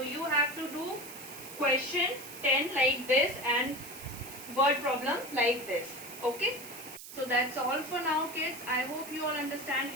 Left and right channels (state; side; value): noise; right; hiss, 13 dB below the sound